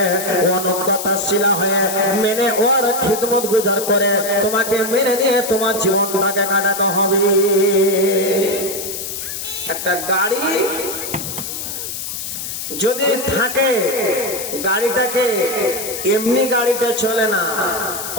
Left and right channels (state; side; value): noise; left; hiss, 6 dB below the sound